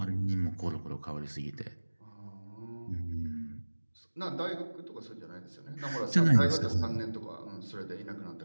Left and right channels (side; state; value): both; inverted; correlation -1.00